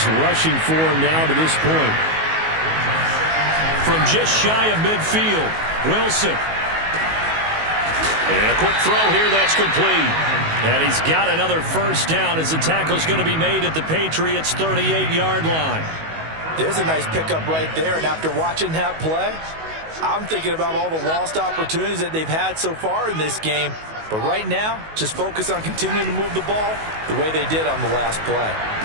rushing for him now to this point. From just shy of midfield, Wilson. And a quick throw here, that's complete. And he's got another first down as the tackle's going to be made at the Patriots' 38-yard line. There's a nice pickup right there, and after watching that play, I'm thinking about all the lost opportunities that they've had so far in this game. But right now, just focus on continuing to move the ball the way they did on the last play.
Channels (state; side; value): late; left; 19 ms